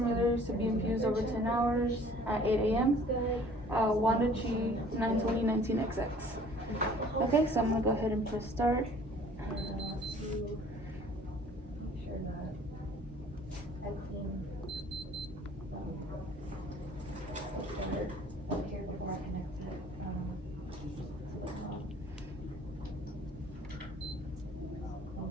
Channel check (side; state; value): both; normal; correlation 0.53